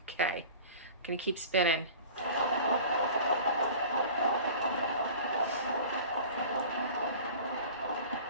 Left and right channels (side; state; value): both; inverted; correlation -0.41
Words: Okay, I'm gonna keep spinning.